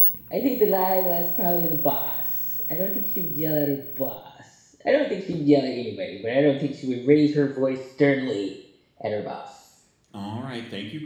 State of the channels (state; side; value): identical; both; correlation 1.00